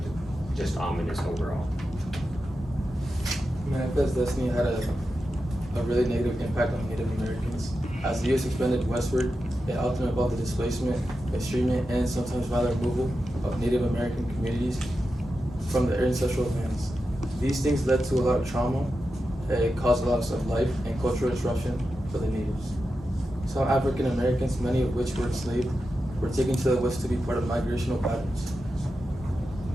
just ominous overall. Manifest Destiny had a really negative impact on Native Americans. As the U.S. expanded westward, it often involved the displacement, estrangement, and sometimes violent removal of Native American communities from their ancestral lands. These things led to a lot of trauma. It caused a loss of life and cultural disruption for the natives. Some African Americans, many of which were enslaved, were taken to the West to be part of migrational patterns.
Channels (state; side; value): normal; both; correlation 0.90